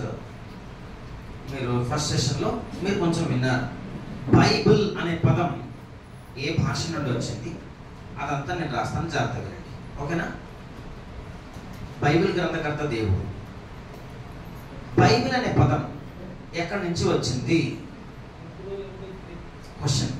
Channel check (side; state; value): both; identical; correlation 1.00